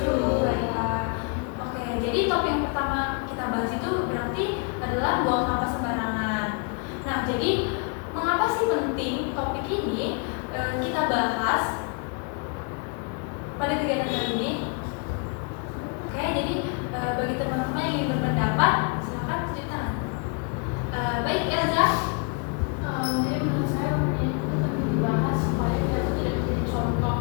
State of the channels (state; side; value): quieter; right; 36.3 dB